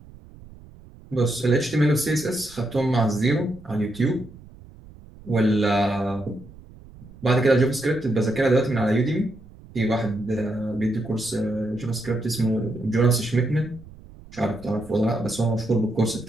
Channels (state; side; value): noise; right; rumble, 20 dB below the sound